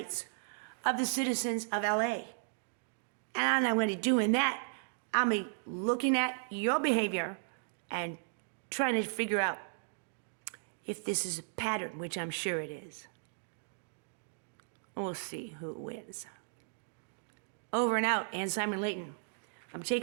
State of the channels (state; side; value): silent; left; digital silence